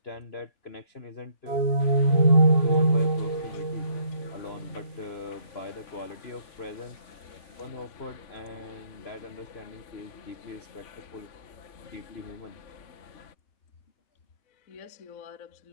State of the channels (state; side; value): late; right; 3.5 ms